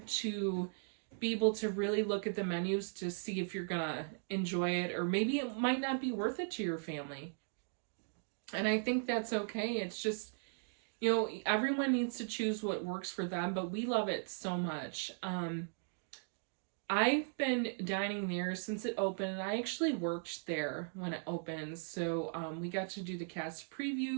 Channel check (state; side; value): silent; left; digital silence